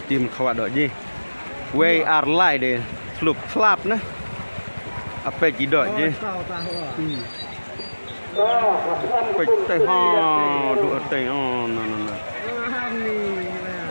tim khawat dok je. We are lie deh. Slup slap nah. Apa je dok je. Baik teh ha duk teh no.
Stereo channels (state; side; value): inverted; both; correlation -1.00